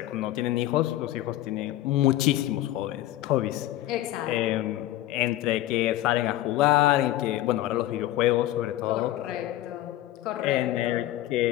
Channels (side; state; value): right; quieter; 14.7 dB